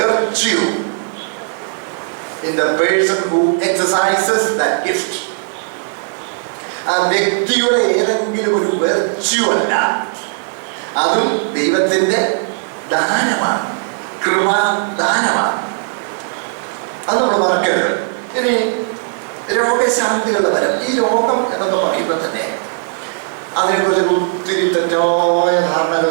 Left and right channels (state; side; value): silent; left; 64 dB below the other